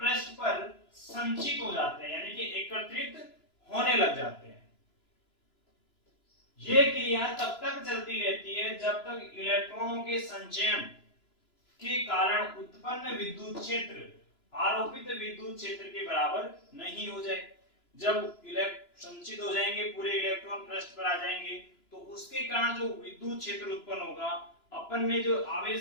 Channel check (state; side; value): late; right; 3.0 ms